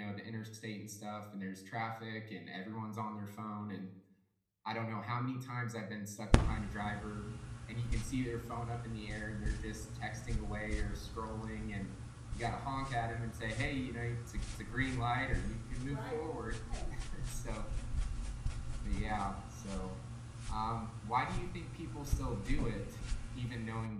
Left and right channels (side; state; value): both; identical; correlation 1.00